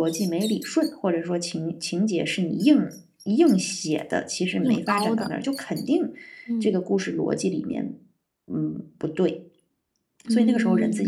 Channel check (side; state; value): both; identical; correlation 1.00